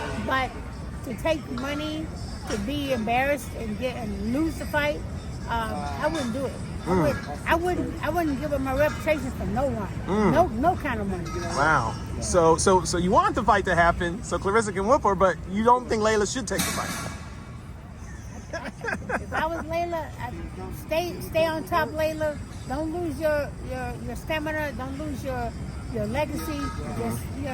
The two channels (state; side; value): identical; both; correlation 1.00